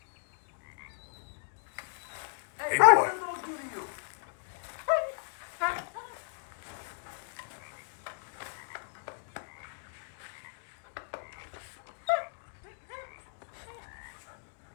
Hey, boy. What did the dog do to you?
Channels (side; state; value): right; silent; digital silence